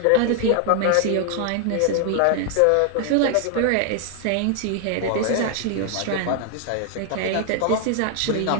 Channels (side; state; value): both; different; correlation 0.00